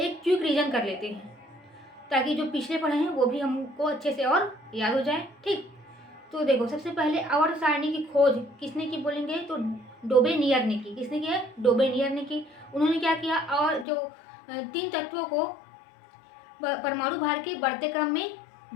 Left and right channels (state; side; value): drops out; right; at 13.9 s